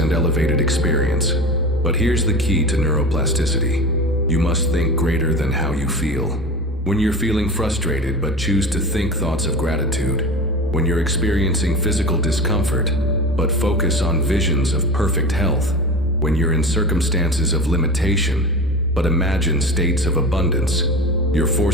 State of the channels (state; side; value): normal; both; correlation 0.31